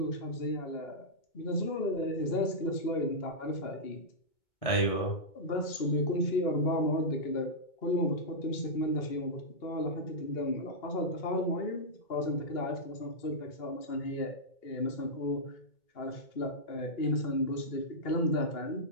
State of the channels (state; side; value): late; right; 2.2 ms